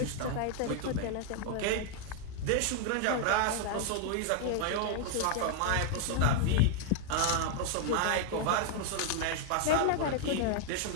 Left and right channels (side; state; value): both; different; correlation 0.00